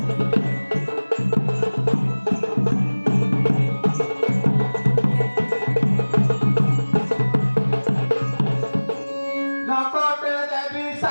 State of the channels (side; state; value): both; inverted; correlation -1.00